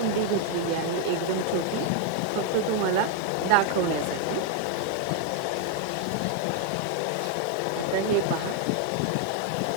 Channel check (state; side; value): different; both; correlation 0.00